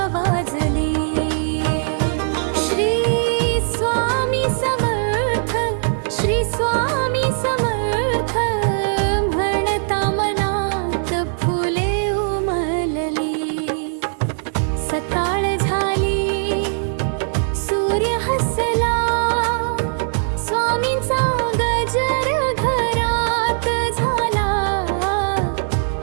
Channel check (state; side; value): silent; left; 66 dB below the other